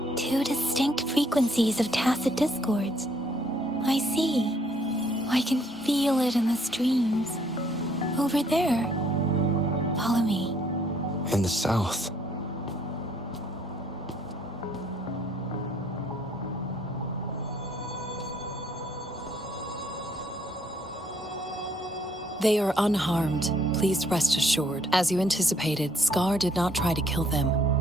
Two distinct frequencies of tacit discords. I see. I can feel it in the streams. Over there. Follow me. In the south. They are unharmed, please rest assured. As you anticipated, Scar did not try to kill them.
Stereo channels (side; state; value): both; normal; correlation 0.66